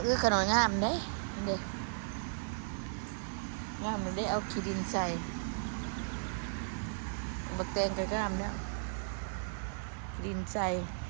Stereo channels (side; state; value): left; silent; digital silence